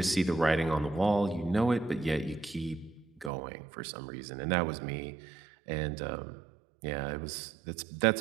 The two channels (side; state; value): left; drops out; at 3.3 s